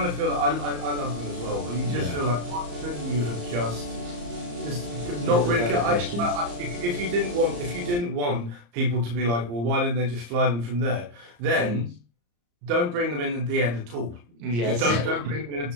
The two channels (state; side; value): late; left; 34 ms